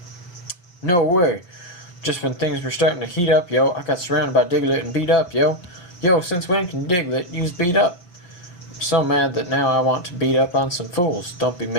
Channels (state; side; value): late; right; 5.6 ms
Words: No way! Just when things were starting to heat up, yo, I got surrounded by Diglett and beat up, yo. Yo, since when can Diglett use beat up? I'm so mad that now I want to beat up on some fools. Don't be